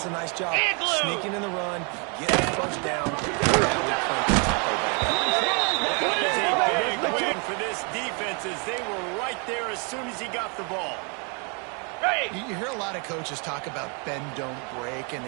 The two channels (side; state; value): left; quieter; 35.3 dB